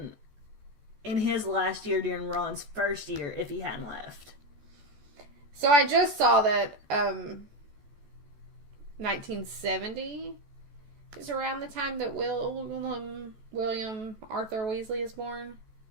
in his last year during Ron's first year if he hadn't left. So, I just saw that 1970 is around the time that William Arthur Weasley is born.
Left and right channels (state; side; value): late; left; 14 ms